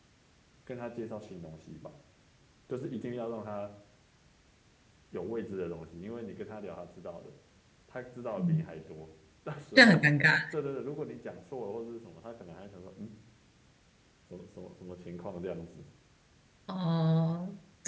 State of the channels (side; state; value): both; identical; correlation 1.00